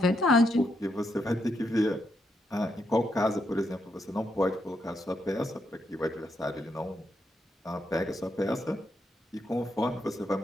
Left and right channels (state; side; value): normal; both; correlation 0.80